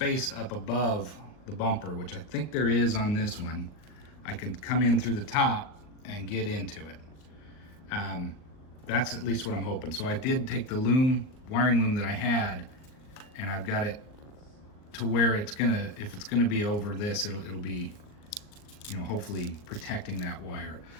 up above the bumper, which I think there is on this one, I can come in through the top and get into it. That's at least what I'm hoping. So I did take the wiring loom that I had, and I've got it to where it's gonna, if it's gonna be over this, it'll be, you know, hopefully protecting that wire.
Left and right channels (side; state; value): right; late; 39 ms